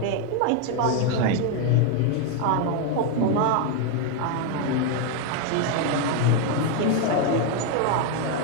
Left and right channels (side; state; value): both; different; correlation 0.01